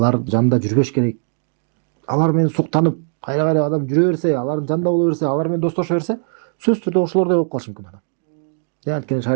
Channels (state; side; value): silent; left; 66 dB below the other